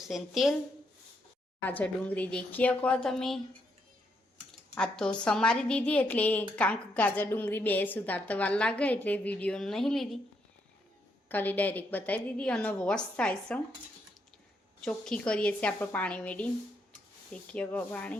તેલ, ગાજર ડુંગળી દેખી શકો તમે. આ તો સમારી દીધી એટલે કાંક ગાજર ડુંગળી બે સુધારતા વાર લાગે એટલે વિડીયો નહીં લીધી, ખાલી ડાયરેક્ટ બતાવી દીધી. અને વોશ થાય છે, ચોખ્ખી કરીએ છીએ આપણે પાણી મેળી. દેખીએ શકો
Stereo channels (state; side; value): normal; both; correlation 0.77